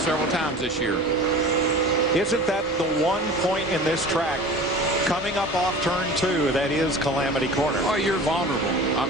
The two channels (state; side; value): normal; both; correlation 0.39